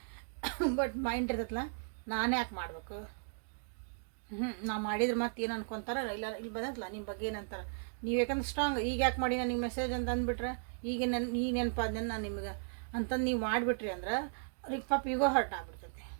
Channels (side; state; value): left; silent; digital silence